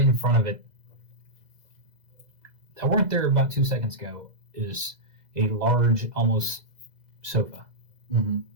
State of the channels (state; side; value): late; left; 2.0 ms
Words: in front of it, that weren't there about 2 seconds ago, is a large, almost sofa. Mm-hmm.